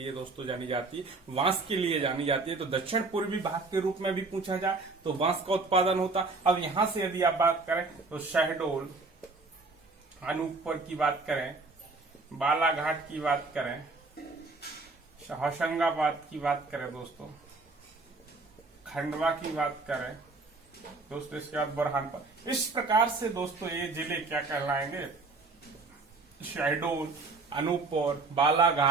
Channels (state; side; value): quieter; left; 3.7 dB